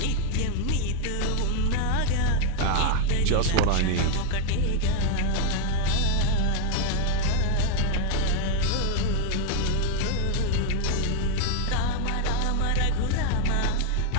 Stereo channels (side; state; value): both; different; correlation 0.00